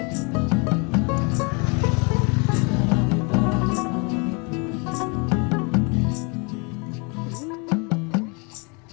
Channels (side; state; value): right; quieter; 32.1 dB